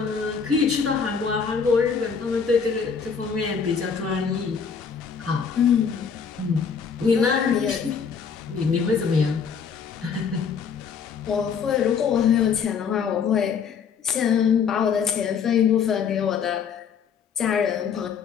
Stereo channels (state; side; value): quieter; right; 6.4 dB